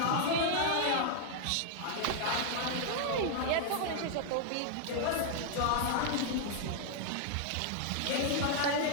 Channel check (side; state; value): both; different; correlation 0.00